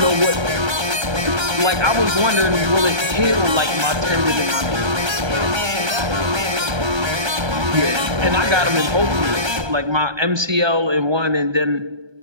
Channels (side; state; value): left; late; 1.3 ms